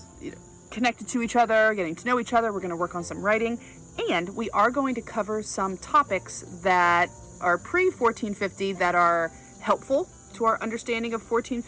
connected to each other, getting to know each other. We're going to work on some writing, and we are going to cover some topics that are pre-1450 that are helpful to our understanding of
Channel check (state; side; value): identical; both; correlation 1.00